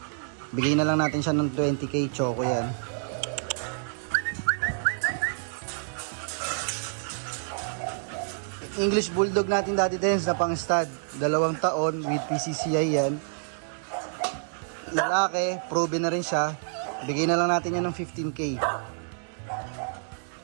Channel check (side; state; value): left; silent; 59 dB below the other